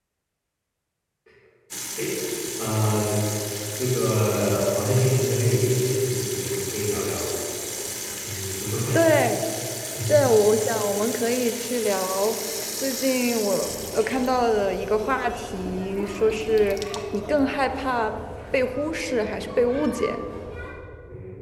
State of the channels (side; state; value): both; identical; correlation 1.00